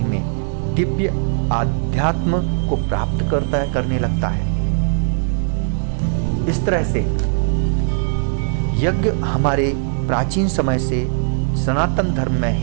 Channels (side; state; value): left; silent; digital silence